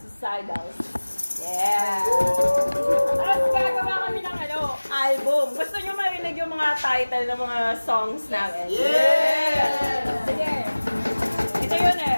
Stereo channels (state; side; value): inverted; both; correlation -1.00